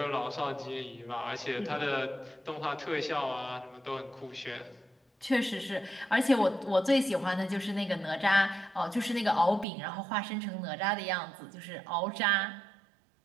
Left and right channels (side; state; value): left; drops out; at 9.7 s